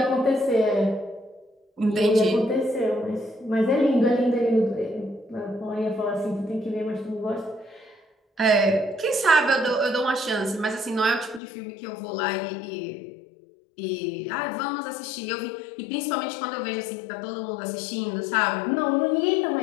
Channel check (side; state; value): right; drops out; at 11.4 s